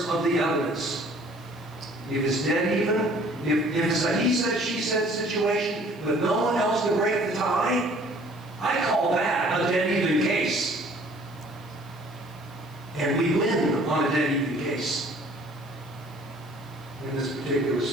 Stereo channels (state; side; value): noise; left; hiss, 27 dB below the sound